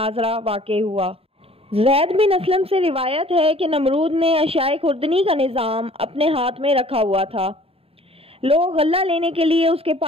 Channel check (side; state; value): left; late; 0.28 ms